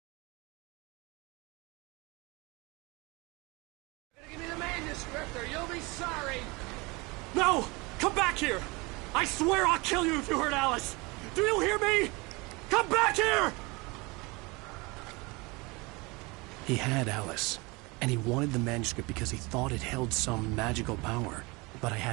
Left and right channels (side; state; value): left; quieter; 25.6 dB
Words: Give me the manuscript or you'll be sorry. No! Come back here! I swear I'll kill you if you hurt Alice! Do you hear me? Come back here! He had Alice, and he wanted the manuscript because he thought it held some magical power. But I